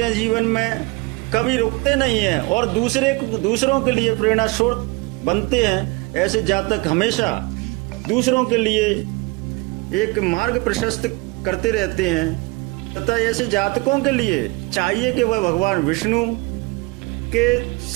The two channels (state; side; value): quieter; left; 24.7 dB